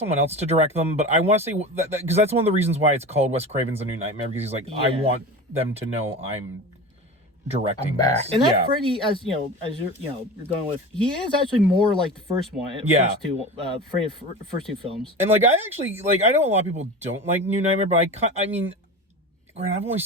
else to direct them, but I want to say that because that's one of the reasons why it's called Wes Craven's The New Nightmare, because he's like, I want them to know I'm directing back. this. And that Freddy, as you're you're going with, he is actually more like the first one. First two films. And like I actually I know a lot of people don't like New Nightmare, but I mean, granted, I've only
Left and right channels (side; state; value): both; normal; correlation 0.30